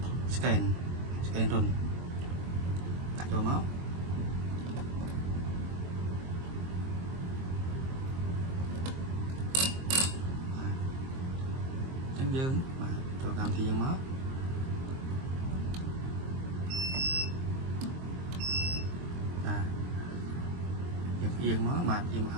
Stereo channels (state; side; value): late; left; 23 ms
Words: scan រុនដាក់ចូលមកយើងបាទចូលកម្មវិធីយើងមកបាទយើងអៀងមកបាទអៀងមកខ